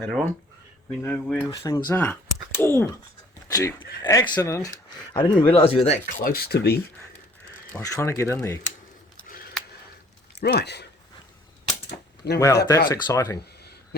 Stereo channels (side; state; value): both; normal; correlation 0.56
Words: on, we know where things are. Oh, gee, accident. I didn't realise you were that close to me. I was trying to get in there. Right. Now Wow, that's exciting.